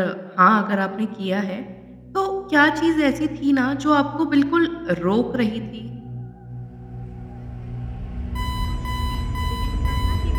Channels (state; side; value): identical; both; correlation 1.00